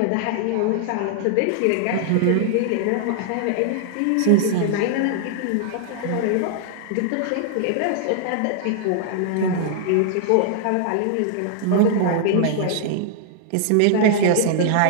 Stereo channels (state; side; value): different; both; correlation -0.01